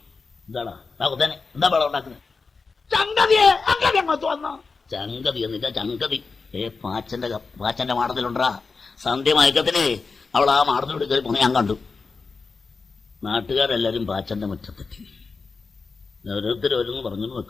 എന്താടാ കൊത്തേനെ, എന്താ പടം ഉണ്ടാക്കുന്നത്? ചങ്കതിയെ അങ്ങനെ അങ്ങോട്ട് വന്നോ? ചങ്കതി എന്നില്ല, ചങ്കതി. പാച്ചന്റെ മാടത്തിലുണ്ടാ സന്ധ്യ മയക്കത്തിന് അവൾ ആ മാടത്തിലൂടെ കയറി പോണ ഞാൻ കണ്ടു. നാട്ടുകാരെല്ലാരും പാച്ചന്റെ മുറ്റത്തെത്തി. ഓരോരുത്തരോരോന്ന് പറഞ്ഞു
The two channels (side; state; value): right; quieter; 4.5 dB